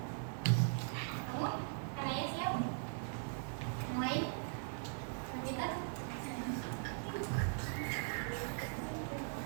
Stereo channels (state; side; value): silent; left; digital silence